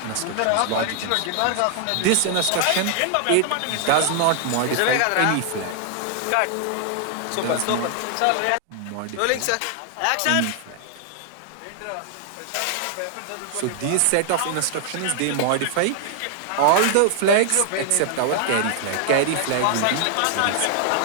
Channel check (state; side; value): different; both; correlation 0.00